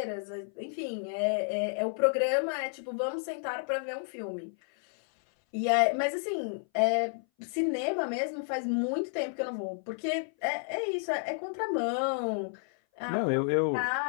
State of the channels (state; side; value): silent; right; 57 dB below the other